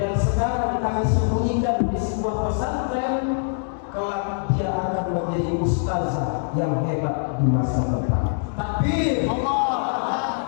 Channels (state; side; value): silent; right; 63 dB below the other